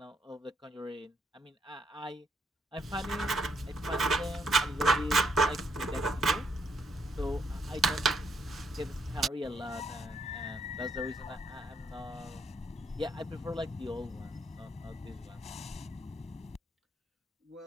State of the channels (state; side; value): normal; both; correlation 0.74